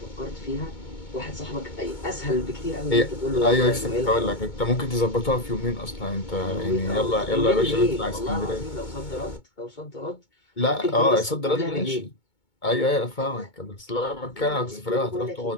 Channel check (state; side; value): late; right; 2.2 ms